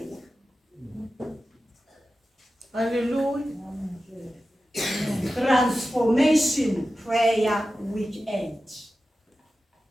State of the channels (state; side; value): normal; both; correlation 0.93